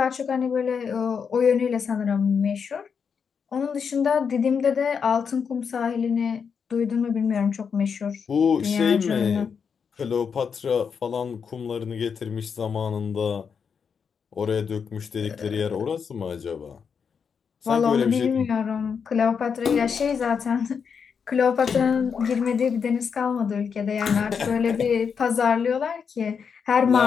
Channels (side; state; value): right; quieter; 6.4 dB